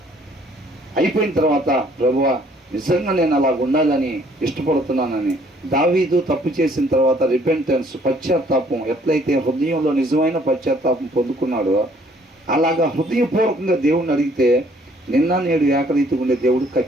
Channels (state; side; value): normal; both; correlation 0.61